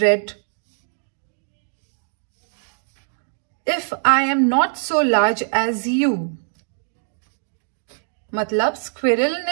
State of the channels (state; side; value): silent; left; digital silence